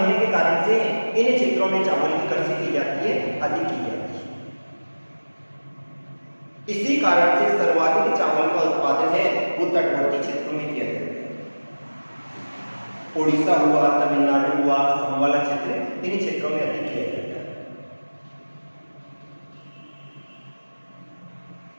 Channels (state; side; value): inverted; both; correlation -1.00